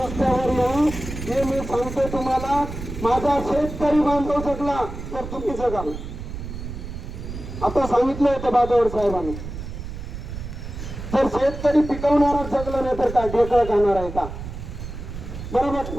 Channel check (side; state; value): right; noise; rumble, 9 dB below the sound